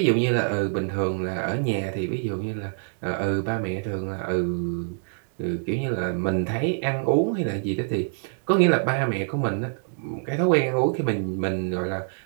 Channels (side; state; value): left; silent; digital silence